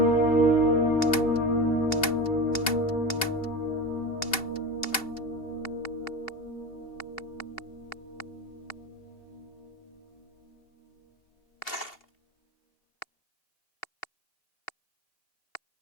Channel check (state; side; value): late; right; 2.7 ms